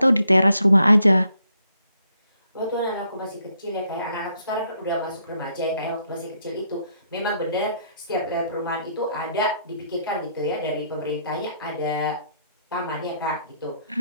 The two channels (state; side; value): inverted; both; correlation -0.72